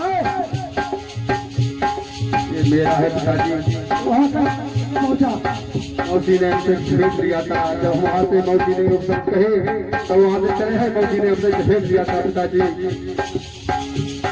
है? मेरा है पिताजी वहाँ तक पहुँचा। मौसी ने हमसे भेज दिया था जब वहाँ से मौसी ने सब कहे तो वहाँ से चले हैं मौसी ने हमसे भेज दिया था पिताजी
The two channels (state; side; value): identical; both; correlation 1.00